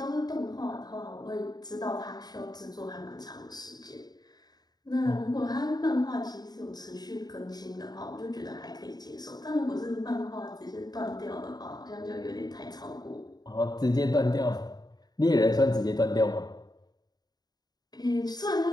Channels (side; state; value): right; late; 0.19 ms